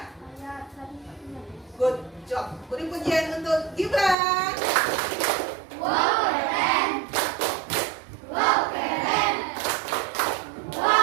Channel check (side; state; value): left; drops out; at 4.2 s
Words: ayat 1. Good job. Beri pujian untuk Gibran. Wow, keren. Wow, keren.